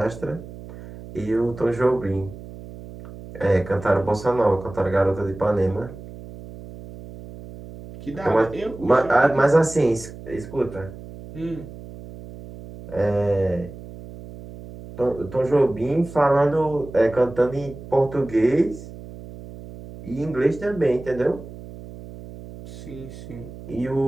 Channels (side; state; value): right; noise; hum, 15 dB below the sound